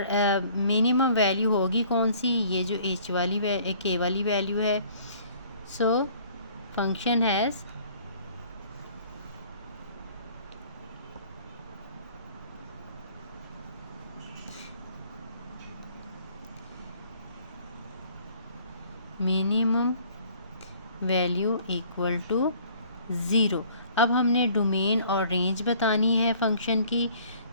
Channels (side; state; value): both; inverted; correlation -0.56